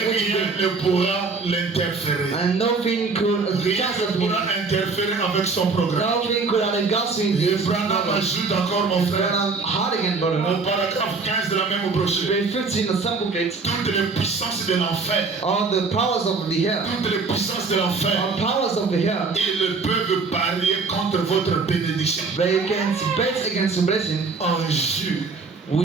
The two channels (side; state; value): left; quieter; 4.4 dB